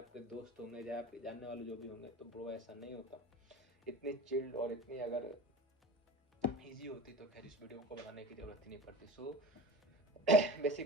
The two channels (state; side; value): normal; both; correlation 0.33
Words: दोस्त होंगे, चाहे आपके जानने वाले जो भी होंगे, तो ब्रो ऐसा नहीं होता। इतनी चिल्ड और इतनी अगर ईजी होती तो खैर इस वीडियो को बनाने की ज़रूरत ही नहीं पड़ती। सो